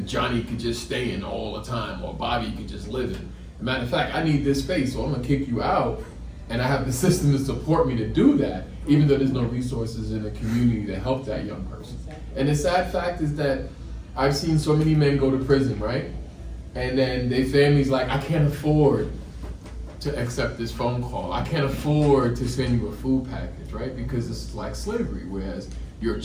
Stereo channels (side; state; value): both; identical; correlation 1.00